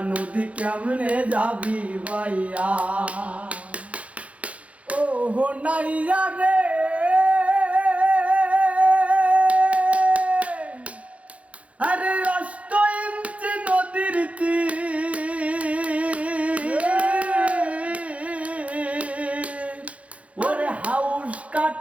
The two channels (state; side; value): late; left; 0.064 ms